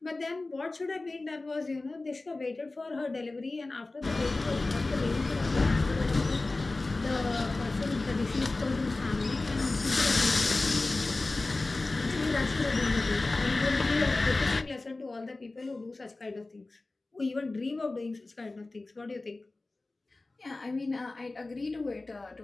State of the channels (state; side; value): quieter; right; 3.2 dB